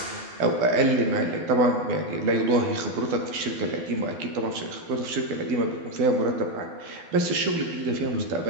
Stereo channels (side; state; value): left; late; 12 ms